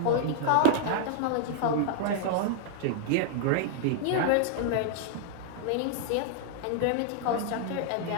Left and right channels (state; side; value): different; both; correlation -0.01